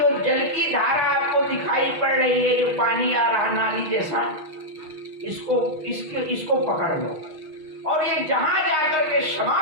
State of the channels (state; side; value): late; left; 6.4 ms